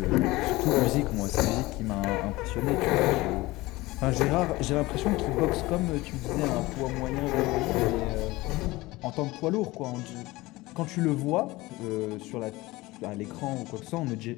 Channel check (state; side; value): quieter; right; 20.2 dB